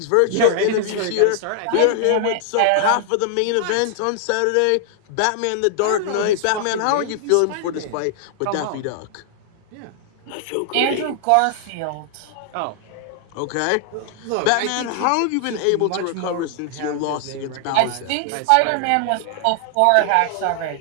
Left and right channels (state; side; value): different; both; correlation 0.00